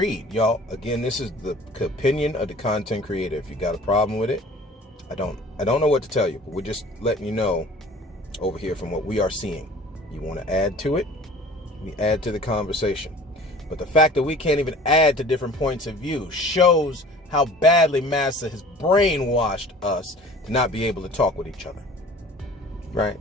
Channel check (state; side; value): normal; both; correlation 0.46